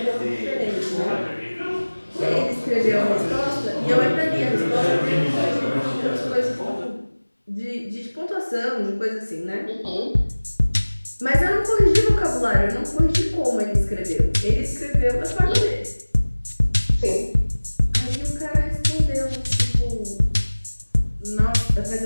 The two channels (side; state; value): both; inverted; correlation -1.00